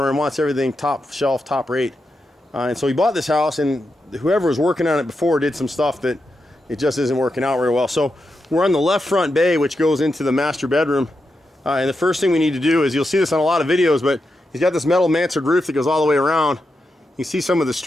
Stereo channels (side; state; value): both; normal; correlation 0.87